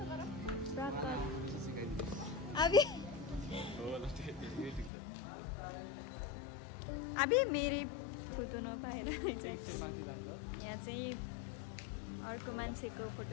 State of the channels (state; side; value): drops out; right; at 4.9 s